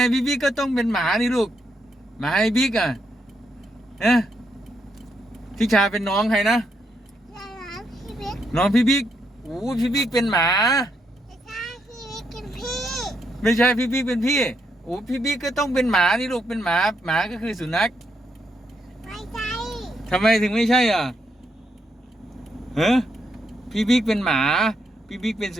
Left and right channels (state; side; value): normal; both; correlation 0.78